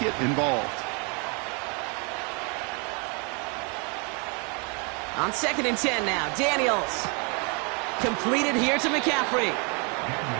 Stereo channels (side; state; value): left; quieter; 34.1 dB